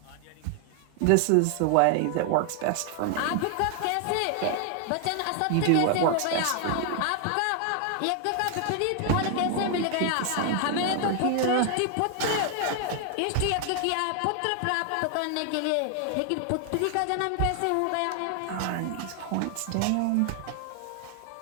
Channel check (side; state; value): both; different; correlation 0.00